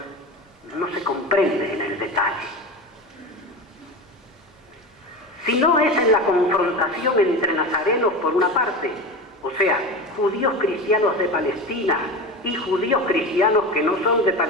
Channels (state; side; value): normal; both; correlation 0.26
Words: no se comprende en el detalle. Si no es en la confrontación entre nazarenos por una parte, o sea, judíos cristianos de Palestina y judíos cristianos que no son de